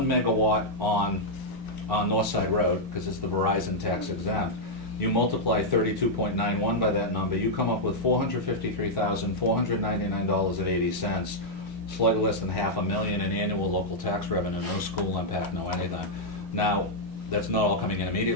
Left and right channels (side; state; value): both; normal; correlation -0.04